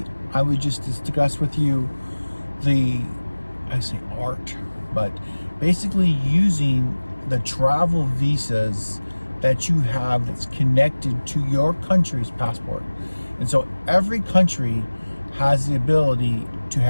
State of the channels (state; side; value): inverted; both; correlation -1.00